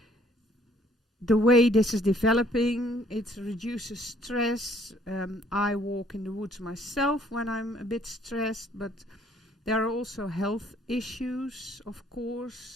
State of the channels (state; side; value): normal; both; correlation 0.62